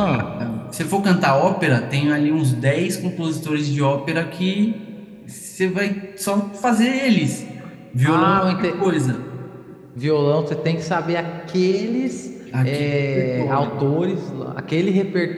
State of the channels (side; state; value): both; identical; correlation 1.00